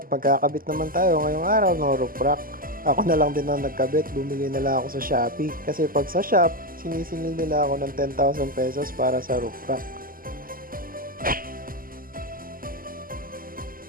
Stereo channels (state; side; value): late; left; 0.42 ms